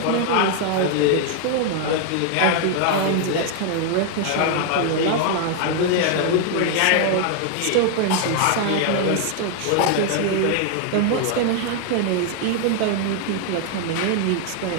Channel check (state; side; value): different; both; correlation 0.00